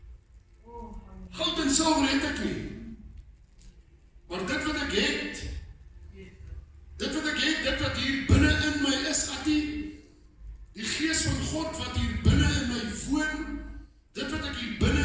Goud en silwer het ek nie. Maar dit wat ek het, dit wat hier binne in my is, die gees van God wat hier binne in my woon, dit wat ek hier binne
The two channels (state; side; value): identical; both; correlation 1.00